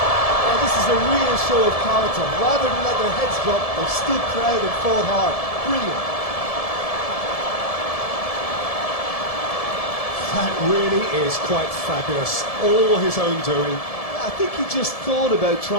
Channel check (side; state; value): right; late; 1.7 ms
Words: Well, this is a real show of character. Rather than let their heads drop, they've stood proud and fought hard. Brilliant. That really is quite fabulous. All his own doing. I think he just thought about